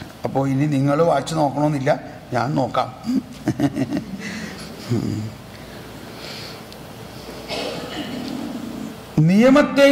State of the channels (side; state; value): both; identical; correlation 1.00